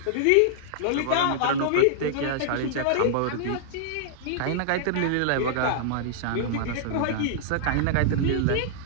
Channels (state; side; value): different; both; correlation -0.01